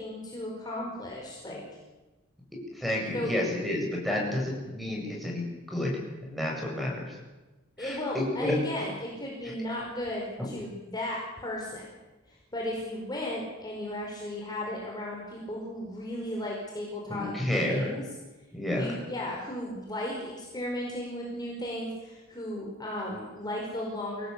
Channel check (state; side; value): normal; both; correlation 0.54